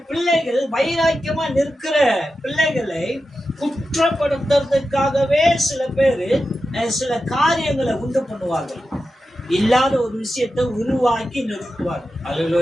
பிள்ளைகள், வைராக்கியமா நிற்கிற பிள்ளைகளை குற்றப்படுத்துறதுக்காகவே சில பேர் சில காரியங்களை உண்டு பண்ணுவார்கள். இல்லாத ஒரு விஷயத்தை உருவாக்கி நிறுத்துவார்கள்.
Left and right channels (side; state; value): both; normal; correlation 0.91